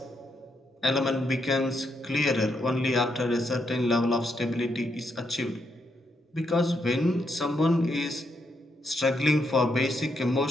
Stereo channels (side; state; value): both; normal; correlation 0.79